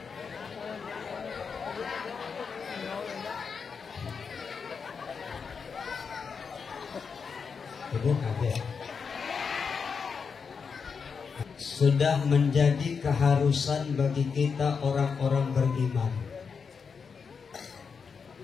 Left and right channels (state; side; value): quieter; right; 5.8 dB